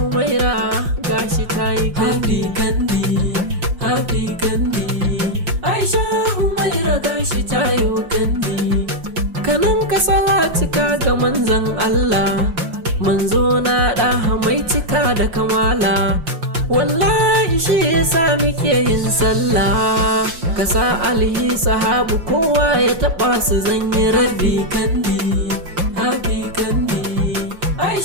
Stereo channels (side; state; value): left; late; 5.7 ms